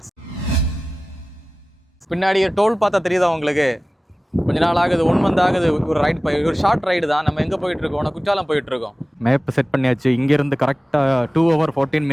பின்னாடி toll பார்த்தா தெரியுதா உங்களுக்கு? கொஞ்ச நாள் ஆகுது, 1 month ஆகுது. ஒரு ஷார்ட் ரைடு தான். நம்ம எங்கே போயிட்டு இருக்கோம்? குற்றாலம் போயிட்டு இருக்கோம். மேப் செட் பண்ணியாச்சு. இங்கேருந்து கரெக்டாக 2 hours 14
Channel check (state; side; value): normal; both; correlation 0.97